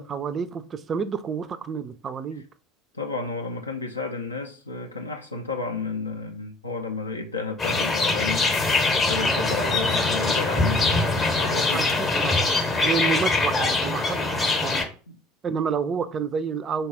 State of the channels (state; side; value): normal; both; correlation 0.53